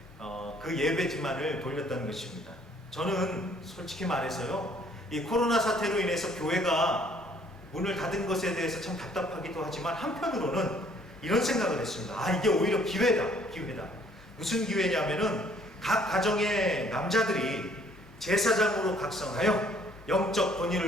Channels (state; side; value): normal; both; correlation 0.61